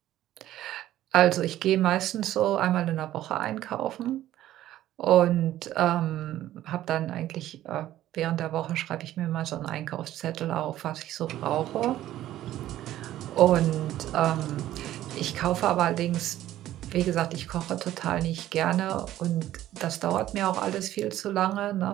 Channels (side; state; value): left; quieter; 13.5 dB